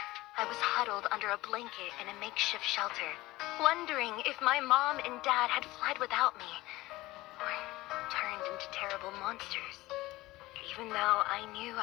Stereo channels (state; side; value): quieter; right; 18.8 dB